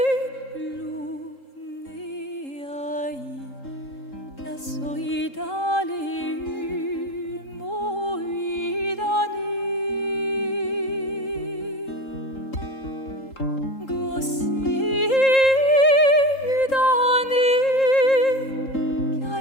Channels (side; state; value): right; late; 3.8 ms